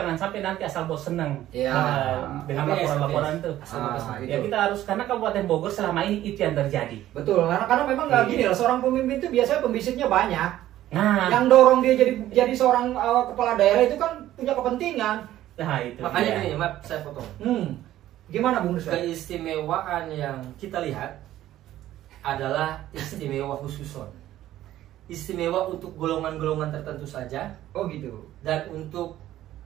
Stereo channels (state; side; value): quieter; left; 13.6 dB